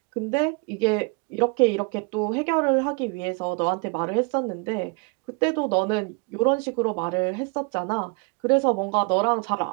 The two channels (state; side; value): quieter; left; 31.3 dB